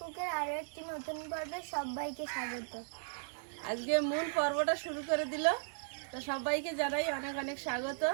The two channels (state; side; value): silent; left; digital silence